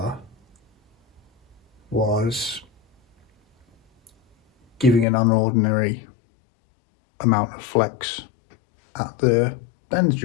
was giving an unordinary amount of flex at the bend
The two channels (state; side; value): drops out; right; at 5.1 s